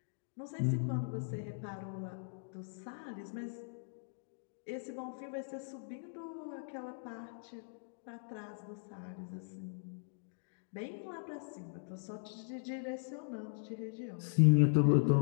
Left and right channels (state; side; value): silent; right; digital silence